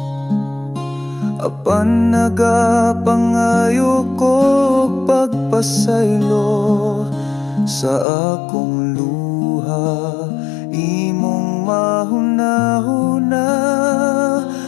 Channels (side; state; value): right; drops out; at 8.1 s